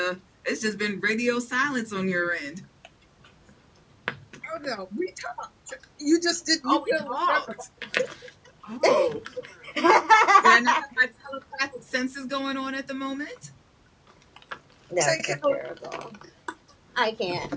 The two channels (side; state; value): both; identical; correlation 1.00